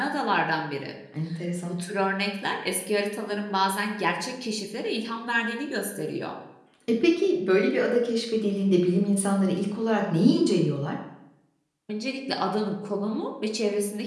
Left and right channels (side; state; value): both; identical; correlation 1.00